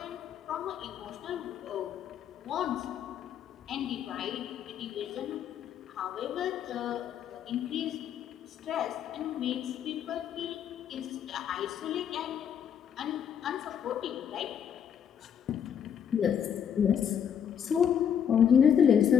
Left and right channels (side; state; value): right; quieter; 8.4 dB